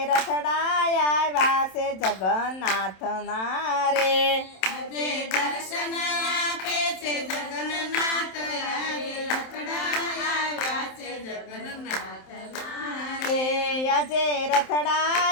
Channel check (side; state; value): right; late; 27 ms